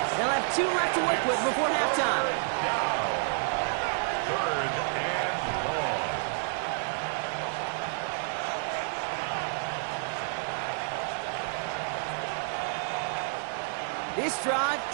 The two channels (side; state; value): left; silent; digital silence